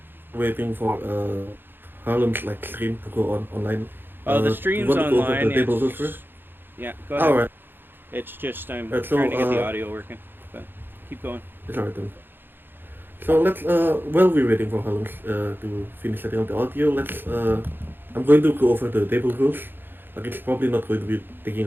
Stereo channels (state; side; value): late; left; 0.099 ms